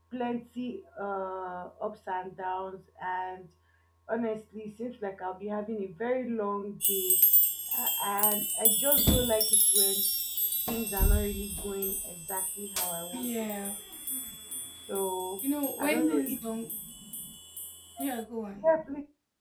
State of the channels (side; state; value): both; identical; correlation 1.00